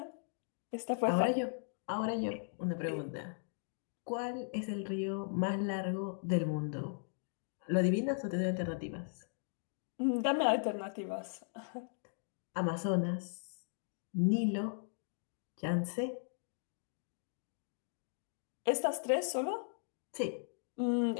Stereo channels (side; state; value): right; silent; digital silence